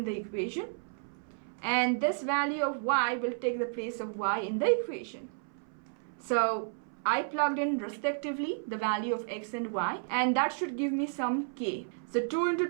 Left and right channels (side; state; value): left; silent; 56 dB below the other